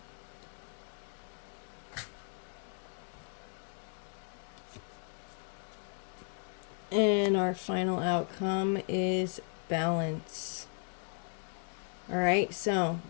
And our final outcome is balance. All right, so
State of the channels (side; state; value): right; silent; 54 dB below the other